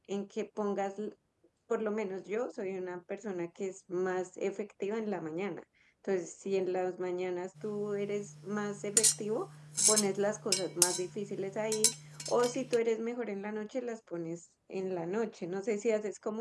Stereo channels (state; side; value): identical; both; correlation 1.00